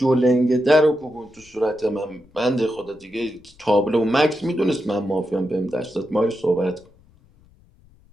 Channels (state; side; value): noise; left; rumble, 29 dB below the sound